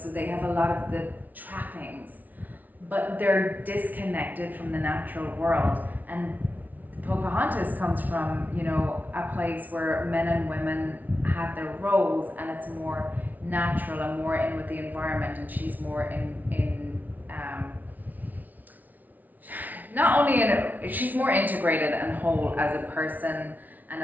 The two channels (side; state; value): left; late; 0.079 ms